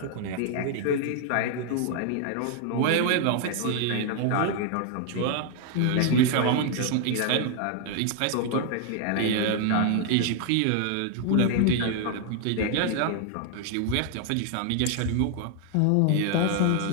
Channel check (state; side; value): different; both; correlation 0.00